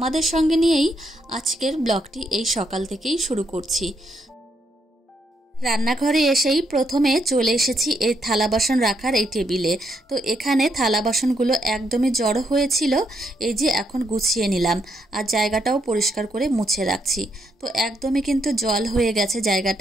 সঙ্গে নিয়েই আজকের ব্লগটি এই সকাল থেকেই শুরু করছি। রান্নাঘরে এসেই প্রথমে চলে এসেছি এই থালা বাসন রাখার এই টেবিলে। তো এখানে থালা বাসনগুলো একদমই জড়ো হয়েছিল, এই যে এখন গুছিয়ে নিলাম আর জায়গাটাও পরিষ্কার করে মুছে রাখছি। তো একদমই কিন্তু জল হয়ে গেছে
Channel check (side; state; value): both; normal; correlation 0.77